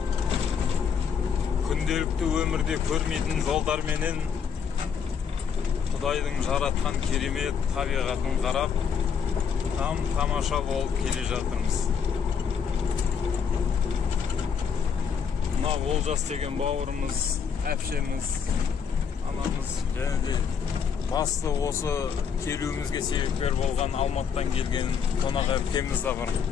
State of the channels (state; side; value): quieter; right; 6.9 dB